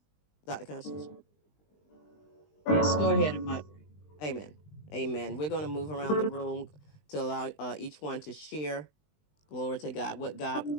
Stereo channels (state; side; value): late; right; 20 ms